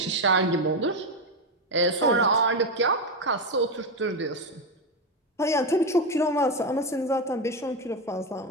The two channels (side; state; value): both; normal; correlation 0.11